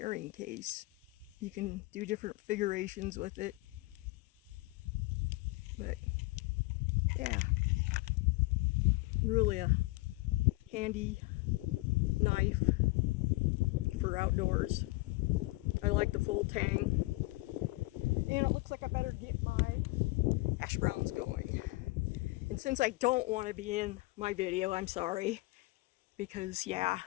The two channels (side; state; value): right; quieter; 22.1 dB